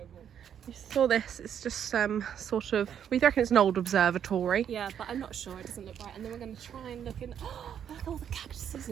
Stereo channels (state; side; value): quieter; left; 8.9 dB